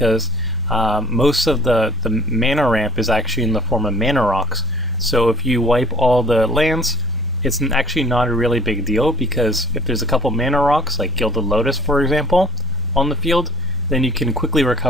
most of the mana ramp is actually in the form of mana rocks. So if you wipe all the lands, it's actually not a really big deal, because if there's a couple mana rocks, like Gilded Lotus for example, on the field, then you can quickly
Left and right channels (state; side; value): normal; both; correlation 0.51